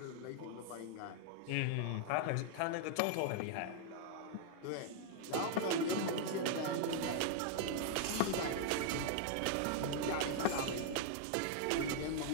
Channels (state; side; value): different; both; correlation 0.00